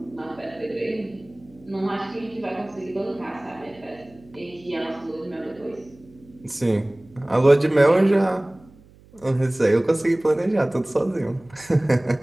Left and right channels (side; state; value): right; noise; hum, 26 dB below the sound